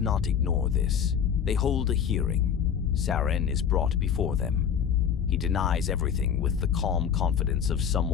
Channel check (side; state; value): right; quieter; 8.0 dB